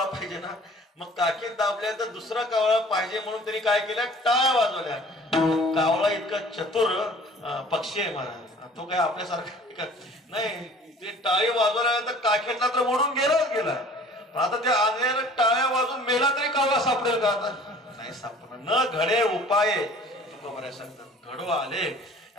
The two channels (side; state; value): both; normal; correlation 0.49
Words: पाहिजे ना, मग काखेत दाबल्यानंतर दुसरा कावळा पाहिजे म्हणून त्यांनी काय केलं, टाळ्या वाजवल्या. कावळा इतका चतुर पक्षी आहे महाराज, तो काय आपल्यासारखा नाही. ते टाळी वाजवल्यानंतर काखेतला तर मोडून गेलाच गेला, पण आता त्या आंधळ्याला टाळ्या वाजून मेला तरी कावळा सापडेल का, आता नाही सापडणार. न घडे उपाय तुकोबराय सांगतात, घडो आले.